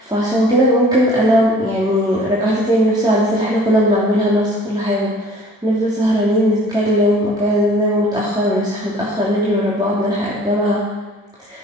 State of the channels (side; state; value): both; normal; correlation 0.51